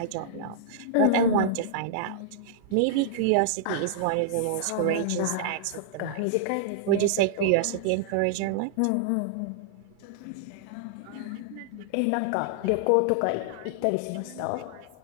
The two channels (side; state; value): both; different; correlation -0.01